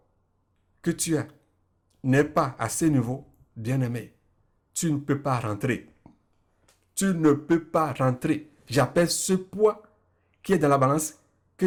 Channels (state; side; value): identical; both; correlation 1.00